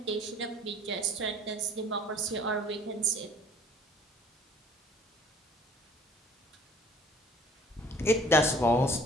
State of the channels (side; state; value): both; normal; correlation 0.53